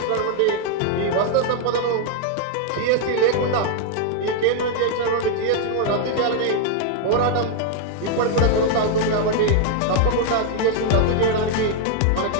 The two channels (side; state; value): both; different; correlation 0.00